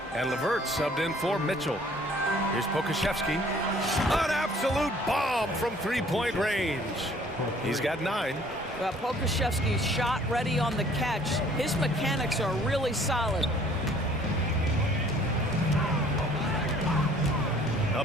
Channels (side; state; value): both; normal; correlation 0.56